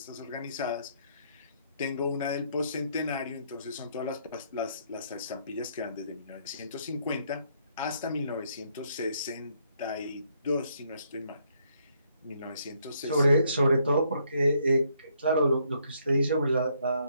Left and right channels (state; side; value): inverted; both; correlation -0.71